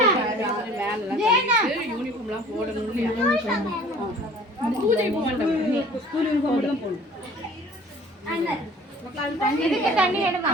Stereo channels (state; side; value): normal; both; correlation 0.49